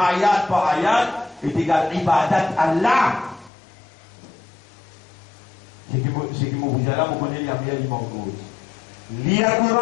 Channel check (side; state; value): right; drops out; at 3.5 s